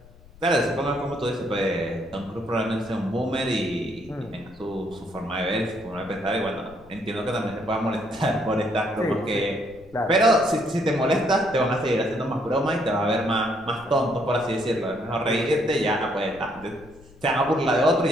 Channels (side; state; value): left; noise; rumble, 23 dB below the sound